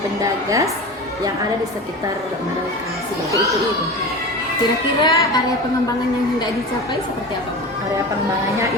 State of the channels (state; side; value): normal; both; correlation 0.31